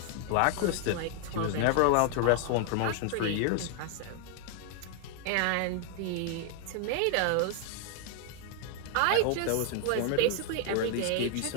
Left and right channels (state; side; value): different; both; correlation 0.00